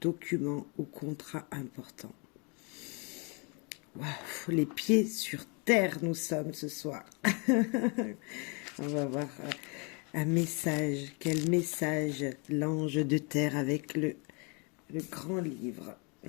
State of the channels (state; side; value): quieter; right; 32.9 dB